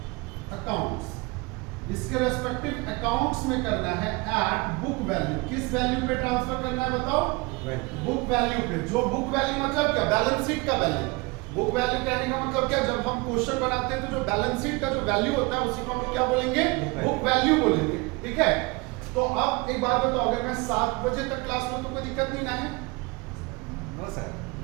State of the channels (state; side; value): quieter; left; 25.6 dB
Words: accounts. इसके रेस्पेक्टिव अकाउंट्स में करना है एट बुक वैल्यू। किस वैल्यू पे ट्रांसफर करना है बताओ? बुक वैल्यू पे। जो बुक वैल्यू मतलब क्या? बैलेंस शीट का वैल्यू। बुक वैल्यू कहने का मतलब क्या? जब हम क्वेश्चन बनाते हैं तो जो बैलेंस शीट का जो वैल्यू होता है उसी को हम क्या बोलेंगे? बुक वैल्यू बोलेंगे, ठीक है। तो अब एक बात बताओ, अगर मैं 7 बजे तक क्लास लूं तो कोई दिक्कत नहीं ना है? No sir.